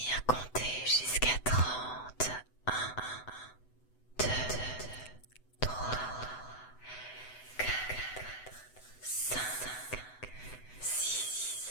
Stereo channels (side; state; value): right; late; 8.0 ms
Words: compter jusqu'à 30. 1, 2,